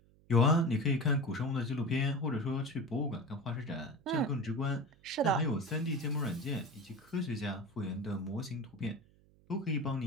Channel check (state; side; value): noise; right; hum, 29 dB below the sound